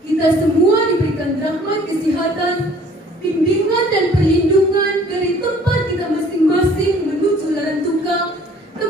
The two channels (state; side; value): normal; both; correlation 0.54